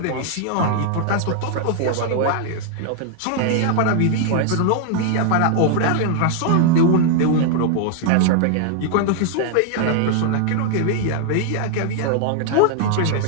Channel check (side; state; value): both; different; correlation 0.00